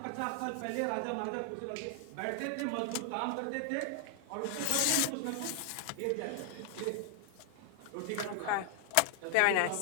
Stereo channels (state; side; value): different; both; correlation 0.00